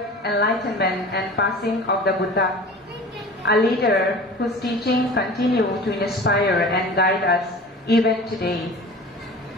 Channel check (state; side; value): normal; both; correlation 0.39